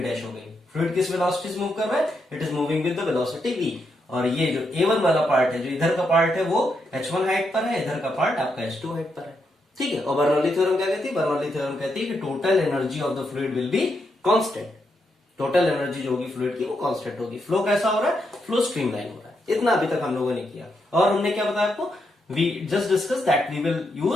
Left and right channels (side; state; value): both; normal; correlation 0.81